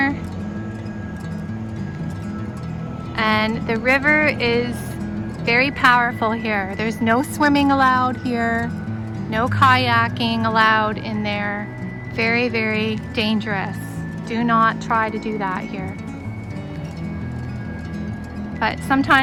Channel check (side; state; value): both; identical; correlation 1.00